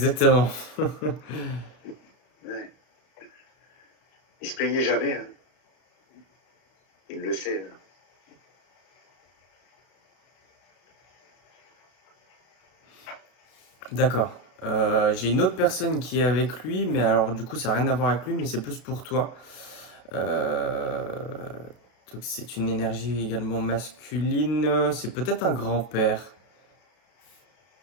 Ouais. Il se plaignait jamais. Hein. Il le sait. Hein. D'accord. J'ai une autre personne qui est avec lui, mais alors du coup ça n'a rien à voir avec lui, mais c'est plus pour toi. Euh, donc c'est une énergie également masculine. C'est peut-être un grand-père.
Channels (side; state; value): right; late; 33 ms